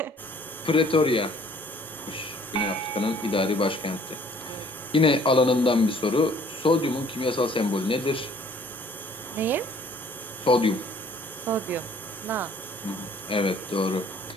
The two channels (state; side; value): normal; both; correlation 0.57